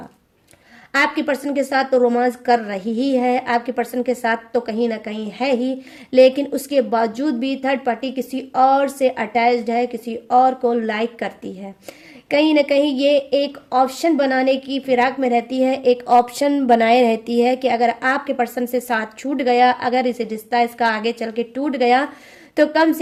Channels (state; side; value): identical; both; correlation 1.00